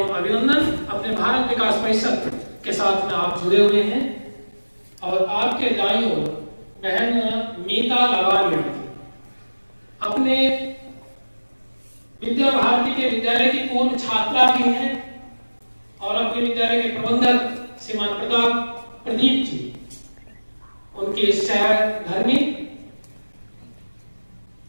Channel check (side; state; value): both; inverted; correlation -1.00